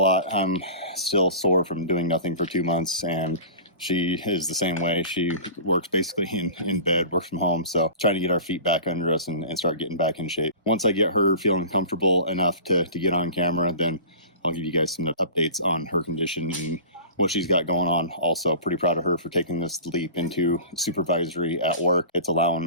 I'm still sore from doing nothing for 2 months, and she is the same way. She works basically in bed, works from home. So trying to get our feet back under us and start getting back in shape. Once I get her feeling comfortable enough to get on camera, then I'll give you guys some updates on her condition and what she's got going on. Also pretty proud of her for taking this leap into supervisory at work. It's allowing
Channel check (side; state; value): both; inverted; correlation -0.38